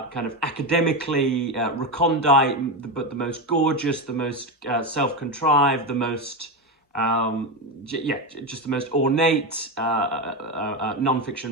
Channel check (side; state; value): both; normal; correlation 0.14